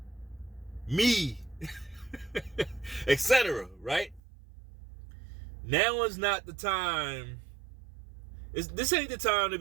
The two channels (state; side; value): drops out; left; at 4.2 s